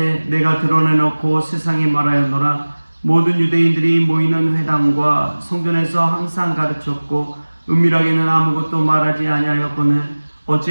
내가 드러내놓고 세상에 말하였노라. 모든 유대인들이 모이는 회당과 성전에서 항상 가르쳤고 은밀하게는 아무것도 말하지 아니하였거늘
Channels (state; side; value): inverted; both; correlation -1.00